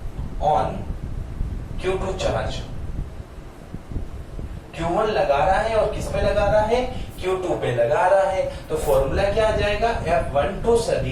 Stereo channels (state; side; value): identical; both; correlation 1.00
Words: on Q2 charge. Q1 लगा रहा है और किस पे लगा रहा है, Q2 पे लगा रहा है, तो फॉर्मूला क्या आ जाएगा, F12